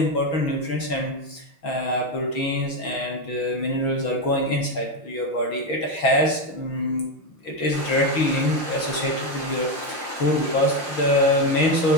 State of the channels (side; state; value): right; late; 6.1 ms